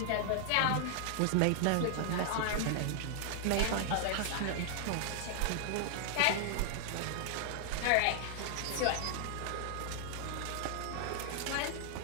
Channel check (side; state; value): both; different; correlation -0.01